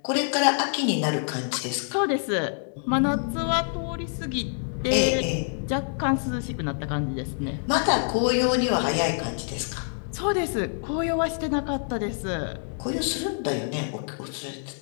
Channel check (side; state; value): right; silent; 61 dB below the other